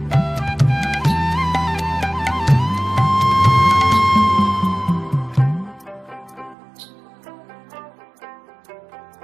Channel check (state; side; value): drops out; left; at 6.6 s